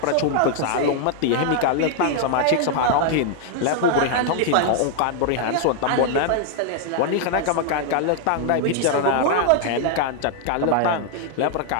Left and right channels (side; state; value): both; different; correlation 0.00